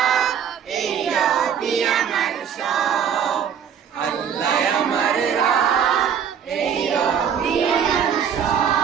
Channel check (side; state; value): left; quieter; 8.1 dB